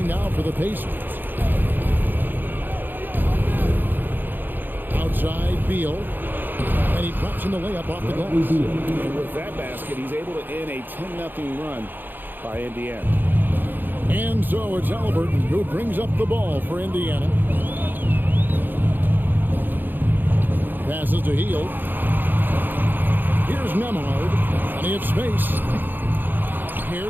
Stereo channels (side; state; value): left; late; 0.091 ms